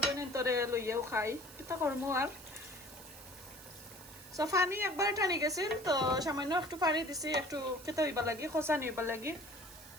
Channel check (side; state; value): right; noise; hiss, 17 dB below the sound